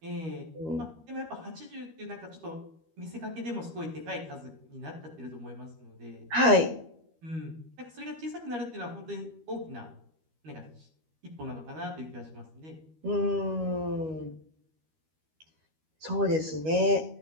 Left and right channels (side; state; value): left; late; 13 ms